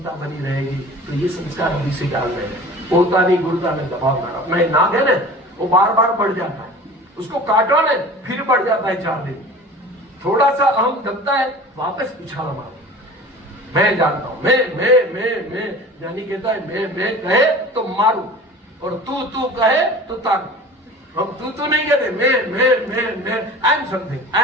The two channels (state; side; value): normal; both; correlation 0.40